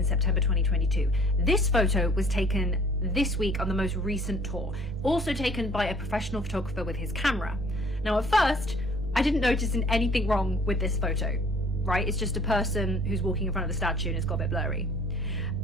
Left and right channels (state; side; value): normal; both; correlation 0.55